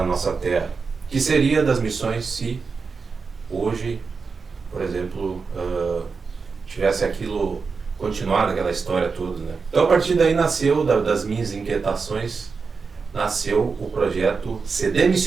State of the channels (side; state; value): left; quieter; 4.9 dB